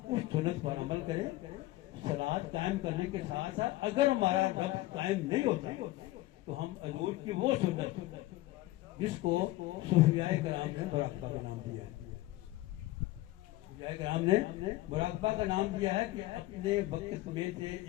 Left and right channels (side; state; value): right; quieter; 17.6 dB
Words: اس سنت پر عمل کریں صلاۃ قائم کرنے کے ساتھ ساتھ اگر ہمارا رب قائم نہیں ہوتا تو ہم حضور کی وہ سنت جس کو صوفیاء کرام نے مراقبہ کا نام دیا ہے صوفیاء کرام نے مراقبہ کا نام دیا ہے کہ اپنے وقت میں سے